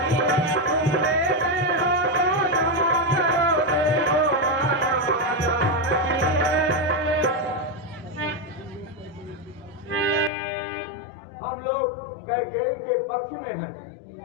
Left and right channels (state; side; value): drops out; right; at 10.3 s